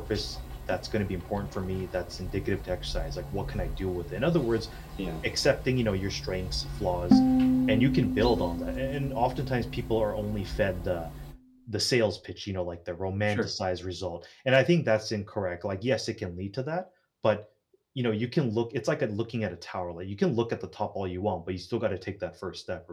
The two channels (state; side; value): identical; both; correlation 1.00